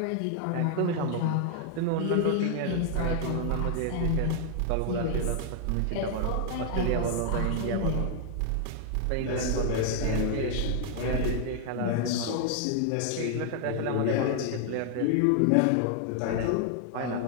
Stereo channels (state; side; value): different; both; correlation 0.00